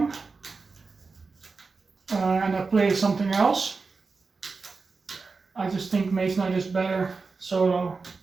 and I play something else, I just think Mage Knight is better solo,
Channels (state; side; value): quieter; left; 4.4 dB